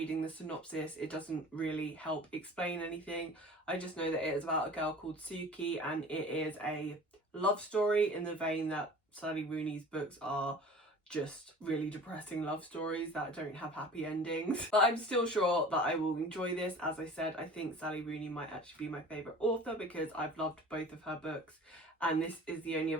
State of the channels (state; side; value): normal; both; correlation 0.42